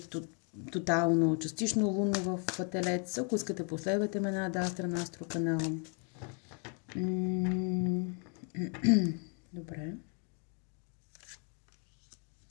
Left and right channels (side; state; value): right; quieter; 39.6 dB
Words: тотално, частично лунно в Телец. Ако искате, последвайте ме на Астра на Астро канал. Добре.